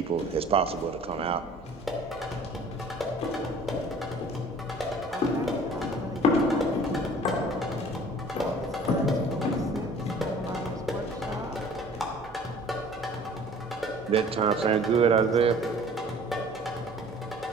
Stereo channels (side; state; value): right; noise; hum, 25 dB below the sound